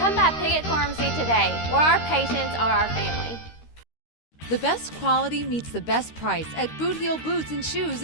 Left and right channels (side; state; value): right; late; 13 ms